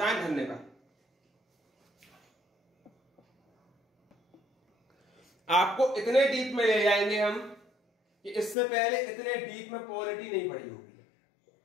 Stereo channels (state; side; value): drops out; right; at 8.6 s